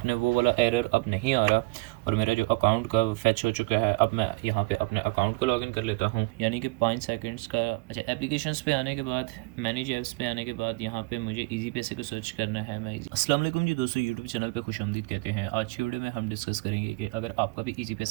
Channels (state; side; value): quieter; left; 25.8 dB